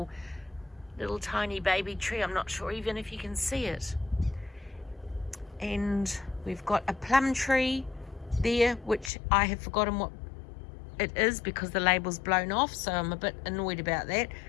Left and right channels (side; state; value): right; drops out; at 9.1 s